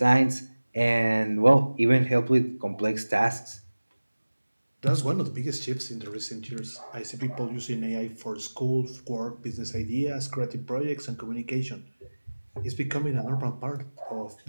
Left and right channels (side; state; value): both; inverted; correlation -1.00